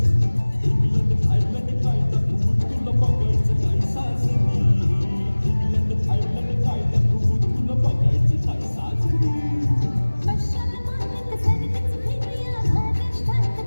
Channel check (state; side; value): inverted; both; correlation -1.00